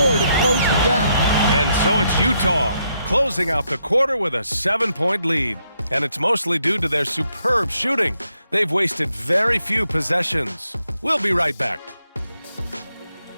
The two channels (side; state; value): both; inverted; correlation -0.77